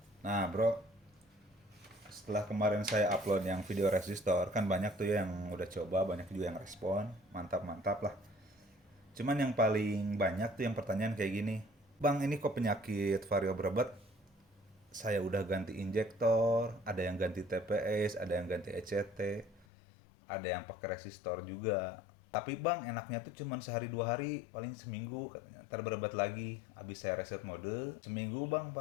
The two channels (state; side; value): drops out; right; at 19.7 s